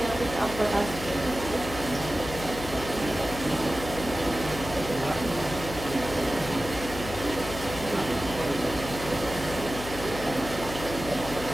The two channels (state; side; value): noise; left; hum, 9 dB below the sound